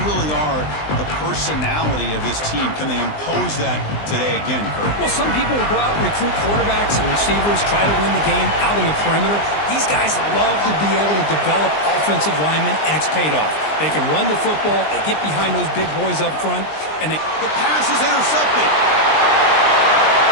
really are the personality of this team. Can they impose that today again, Kurt? Well, some people will go out and recruit quarterbacks and receivers, try to win the game out on the perimeter. These guys love to be able to develop offensive linemen, and it's paid off. They can run the football, they get behind those big boys up front, and the pass is intercepted.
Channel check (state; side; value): late; right; 20 ms